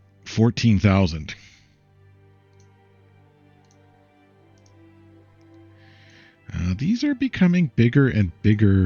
14,000. These are becoming bigger and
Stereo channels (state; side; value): identical; both; correlation 1.00